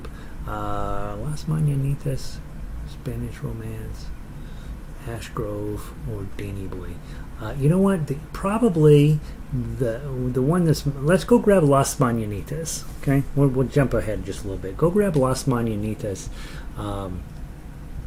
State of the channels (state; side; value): identical; both; correlation 1.00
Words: Las Mananitas, Spanish Romance, Ash Grove, or Danny Boy. You know what? Probably the one that's. Let's go grab Las Mananitas. Okay, we'll jump ahead just a little bit. Go grab Las Mananitas.